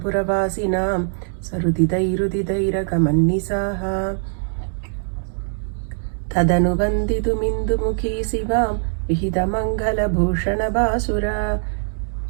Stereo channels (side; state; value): left; silent; digital silence